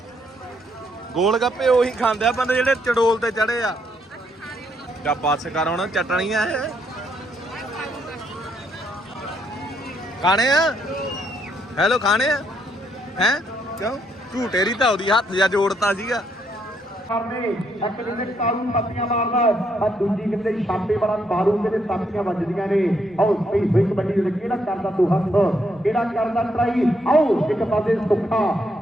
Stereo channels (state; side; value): normal; both; correlation 0.74